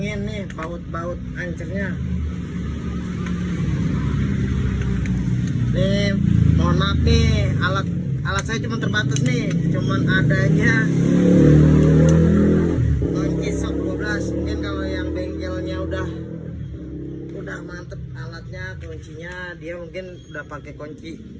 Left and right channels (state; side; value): identical; both; correlation 1.00